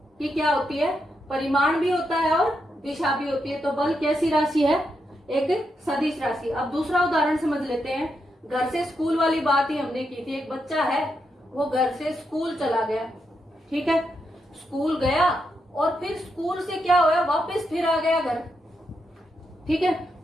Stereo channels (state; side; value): normal; both; correlation 0.83